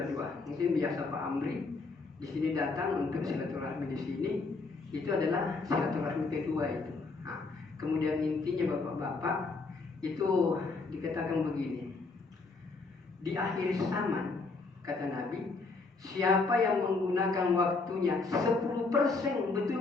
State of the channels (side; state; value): right; quieter; 3.9 dB